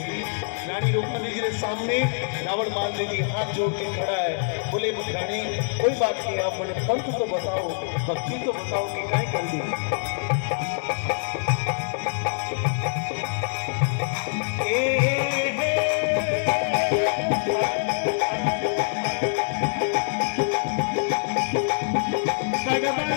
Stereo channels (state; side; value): silent; right; 62 dB below the other